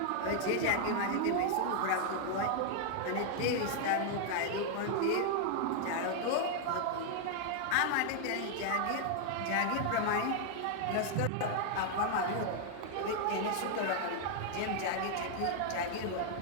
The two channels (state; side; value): different; both; correlation 0.00